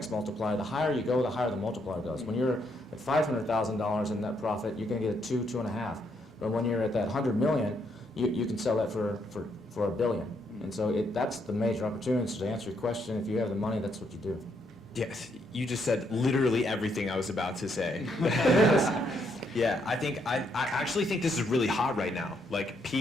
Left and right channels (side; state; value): both; normal; correlation 0.75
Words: multiplier. The higher you go, the higher the multiplier goes. When you're at $500,000 in net profit, you're going to get a 2, 2.5. But when you're at that 100 million, you can sell that for $1 billion. And so that's the major opportunity. So to answer your question, if you have the money, that's what you do. Yes, you just said literally everything I was about to say. Yeah, I actually think this is really hot right now. Like